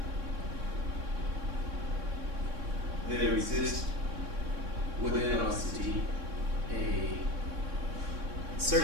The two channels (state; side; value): late; left; 3.6 ms